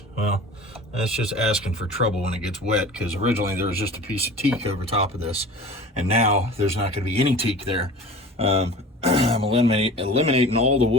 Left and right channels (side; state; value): both; normal; correlation 0.39